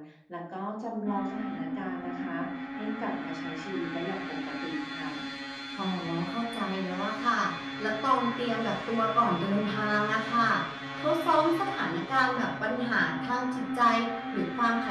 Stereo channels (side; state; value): both; identical; correlation 1.00